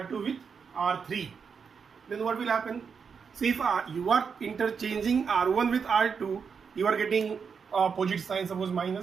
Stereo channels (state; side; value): quieter; left; 6.1 dB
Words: with R3, then what will happen? So if you are interchanging R1 with R2, you are getting opposite sign, suppose